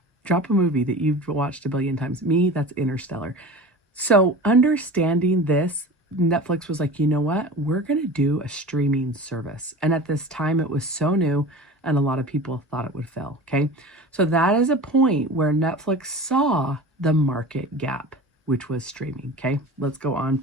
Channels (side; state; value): both; normal; correlation 0.35